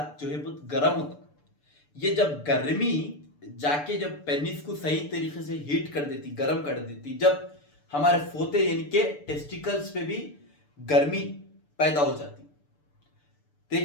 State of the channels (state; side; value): late; right; 6.8 ms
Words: बहुत गर्म होता है, ये जब गर्मी जाके जब पेनिस को सही तरीके से हीट कर देती, गर्म कर देती, जब हमारे फोते यानी कि टेस्टिकल्स पे भी गर्मी पैदा हो जाती।